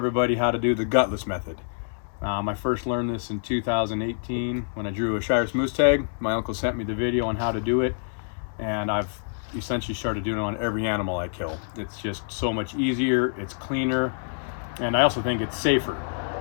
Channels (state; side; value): silent; right; 61 dB below the other